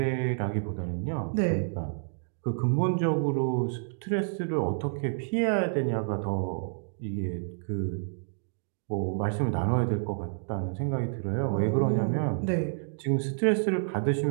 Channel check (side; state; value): left; silent; digital silence